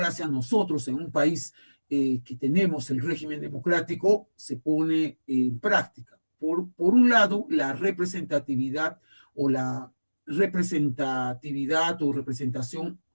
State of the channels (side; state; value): both; inverted; correlation -1.00